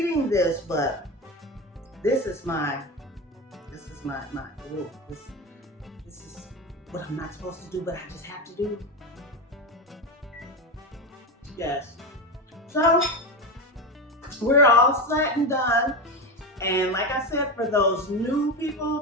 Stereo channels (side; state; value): both; normal; correlation 0.19